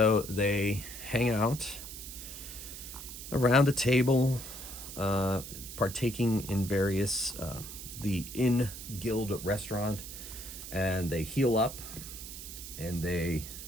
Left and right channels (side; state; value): right; noise; hiss, 11 dB below the sound